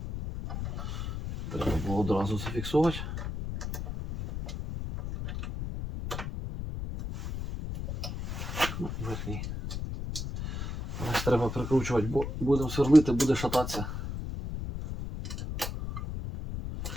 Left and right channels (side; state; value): left; noise; rumble, 6 dB below the sound